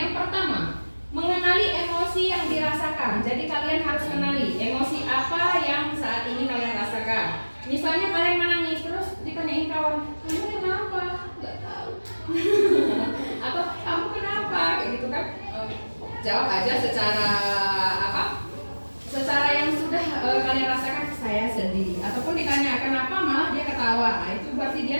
pertama, mengenali emosi yang dirasakan. Jadi kalian harus kenali emosi apa yang saat ini kalian rasakan. Misalnya kalian menangis terus ditanyain kawan, kamu kenapa? Nggak tahu. Atau kamu kenapa? Kayak gitu kan? Jawab aja secara secara yang sudah kalian rasakan. Saya sedih. Ataupun ditanya kenapa, malah dia ketawa. Nah, itu berarti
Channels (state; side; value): inverted; both; correlation -1.00